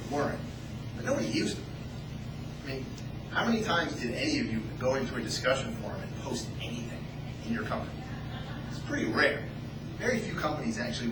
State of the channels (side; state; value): both; identical; correlation 1.00